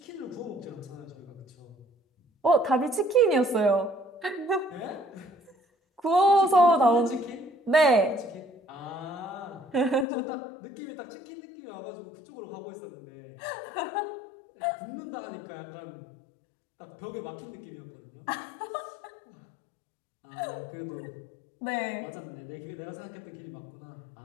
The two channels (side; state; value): right; drops out; at 10.1 s